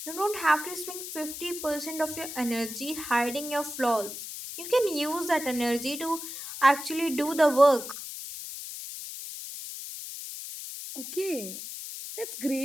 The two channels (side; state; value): left; noise; hiss, 9 dB below the sound